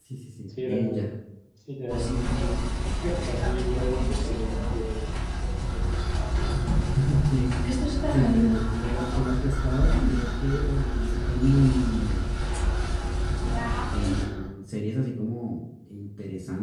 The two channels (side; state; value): both; identical; correlation 1.00